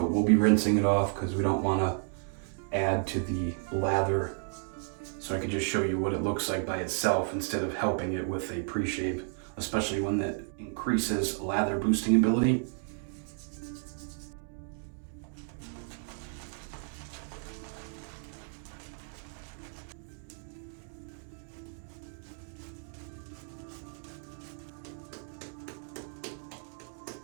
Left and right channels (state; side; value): silent; left; 56 dB below the other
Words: we'll be rinsing it off because we don't want to add to the lather. So I can just show you what it looks like by itself instead of helping it with a pre-shave, especially when that increases lather boosting ability.